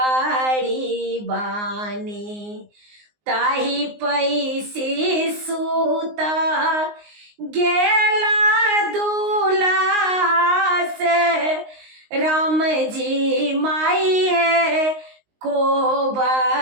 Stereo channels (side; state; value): left; late; 19 ms